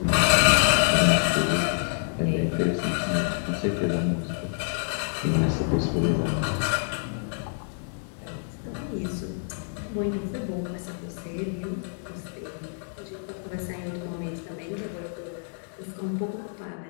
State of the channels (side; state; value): right; silent; digital silence